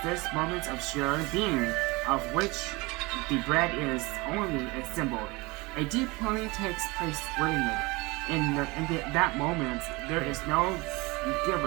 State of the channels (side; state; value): left; quieter; 24.4 dB